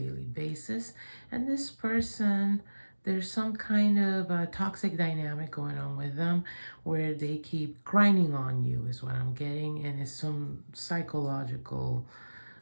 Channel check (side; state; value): both; inverted; correlation -1.00